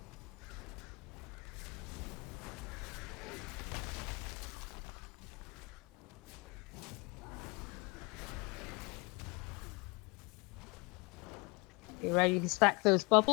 You ready to stack those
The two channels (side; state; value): right; quieter; 28.0 dB